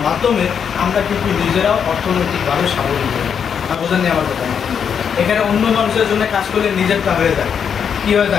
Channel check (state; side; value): quieter; right; 7.4 dB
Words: মাধ্যমে আমরা কিন্তু নিজেরাও অর্থনৈতিকভাবে স্বাবলম্বী হই। না বোঝেননি আমার কথা? এখানে অন্য মানুষের জন্য কাজ করলে নিজেরটা হয়ে যায়। কী হয়ে